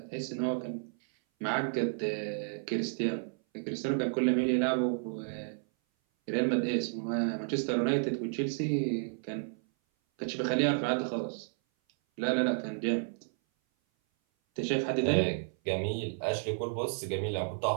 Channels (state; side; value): silent; left; 56 dB below the other